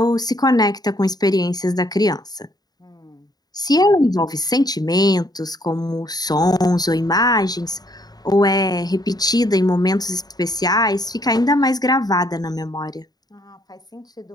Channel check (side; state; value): right; late; 0.19 ms